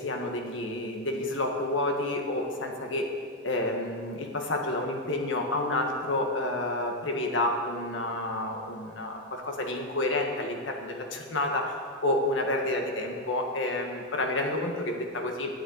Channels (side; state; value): both; normal; correlation 0.02